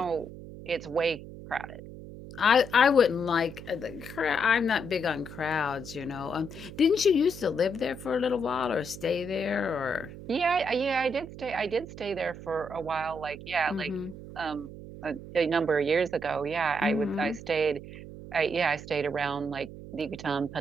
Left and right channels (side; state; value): right; noise; hum, 13 dB below the sound